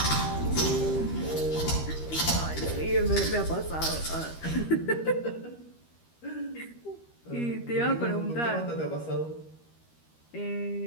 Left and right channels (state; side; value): late; right; 13 ms